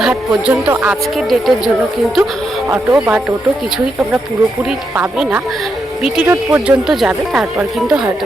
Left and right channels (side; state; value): both; normal; correlation 0.82